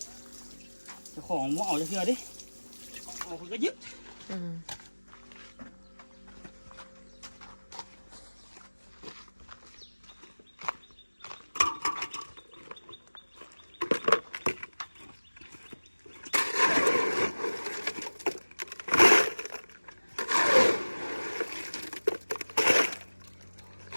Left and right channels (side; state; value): both; inverted; correlation -1.00